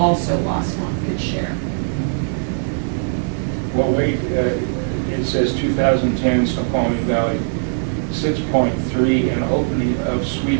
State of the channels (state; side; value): silent; left; digital silence